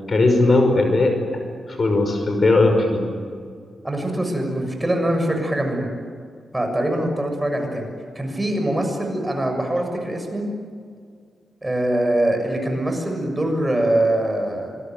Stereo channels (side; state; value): both; normal; correlation 0.88